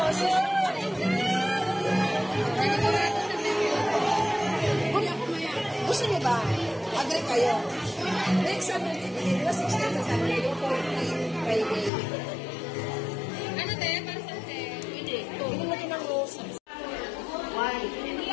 gusto niyo ba? Agree kayo. Next Saturday, 16 sa Saturday, 14 Friday. Ano te? Para sa te? Hindi. Hindi mo din ang rose. Why? Hindi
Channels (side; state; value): right; drops out; at 11.9 s